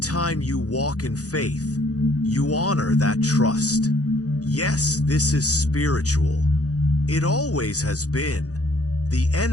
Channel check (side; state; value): right; late; 0.67 ms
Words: you walk in faith, you honor that trust. Yes, this is spiritual. It always has been. The